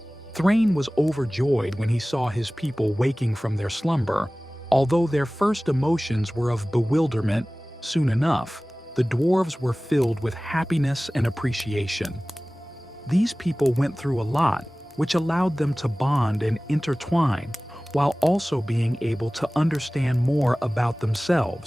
Thrain was overjoyed when he saw his people waking from their slumber. Although their first emotions were of bewilderment, soon enough, the dwarves were filled with happiness and appreciation. These people went through a lot, which allowed them to bond and intertwine, while also being able to understand more about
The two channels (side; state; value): both; normal; correlation 0.98